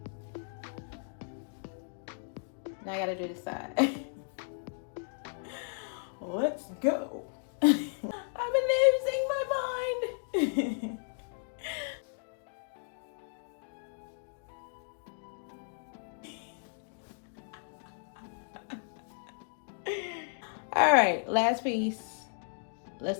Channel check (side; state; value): right; silent; digital silence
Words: Now I gotta do this side. Let's go. I'm losing my mind. All right, last piece.